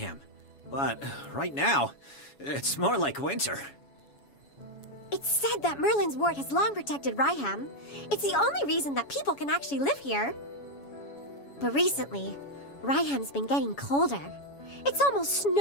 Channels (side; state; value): right; late; 7.1 ms